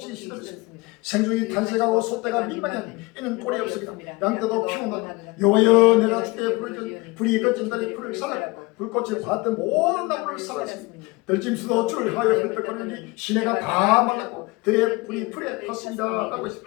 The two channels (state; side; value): quieter; right; 24.0 dB